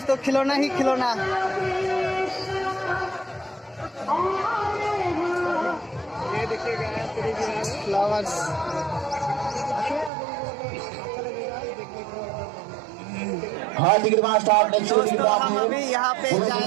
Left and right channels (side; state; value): left; drops out; at 10.1 s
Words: खिलौना ही खिलौना। ये देखिएगा फ्लावर्स। हाँ टिकट मास्टर दोस्तों हम अभी यहाँ पे